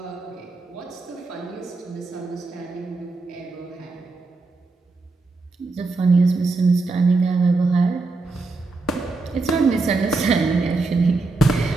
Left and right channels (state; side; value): quieter; left; 3.7 dB